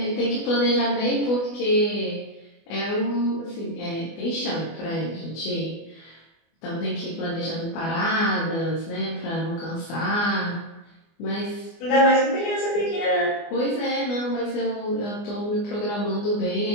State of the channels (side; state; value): right; late; 24 ms